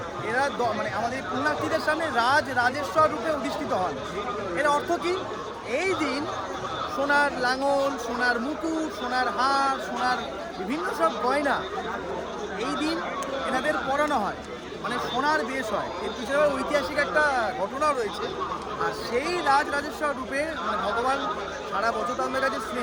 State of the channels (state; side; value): identical; both; correlation 1.00